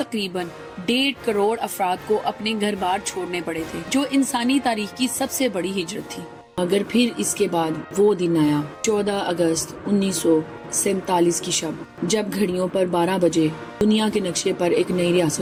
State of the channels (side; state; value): both; identical; correlation 1.00